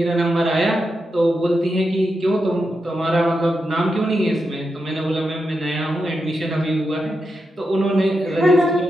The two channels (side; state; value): both; normal; correlation 0.87